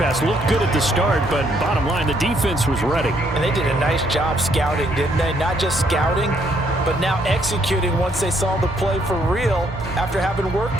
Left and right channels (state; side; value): normal; both; correlation 0.70